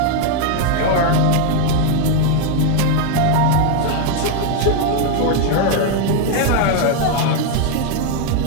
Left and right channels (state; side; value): different; both; correlation 0.01